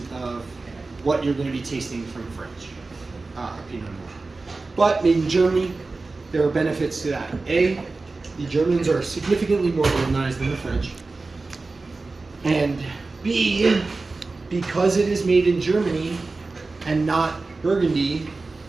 of what you're going to be tasting from French Pinot Noir. But made in Germany, there are benefits to that. A, the Germans are significantly more organized than the French. And B, because it is made in Germany and not Burgundy,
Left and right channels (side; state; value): left; quieter; 3.6 dB